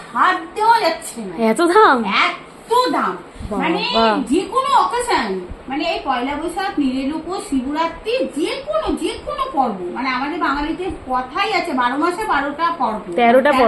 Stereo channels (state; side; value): identical; both; correlation 1.00